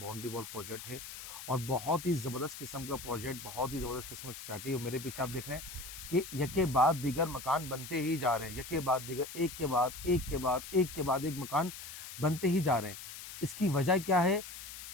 वॉल प्रोजेक्ट है और बहुत ही ज़बरदस्त किस्म का प्रोजेक्ट, बहुत ही ज़बरदस्त किस्म की सोसाइटी है। मेरे पीछे आप देख रहे हैं कि यके बाद दीगर मकान बनते ही जा रहे हैं, यके बाद दीगर, एक के बाद एक के बाद एक के बाद एक मकान बनते ही जा रहे हैं। इसकी वजह क्या है?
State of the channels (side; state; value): left; noise; hiss, 11 dB below the sound